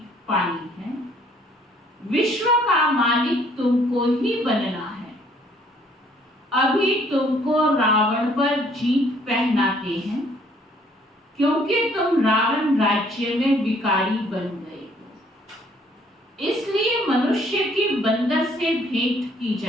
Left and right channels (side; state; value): both; normal; correlation 0.62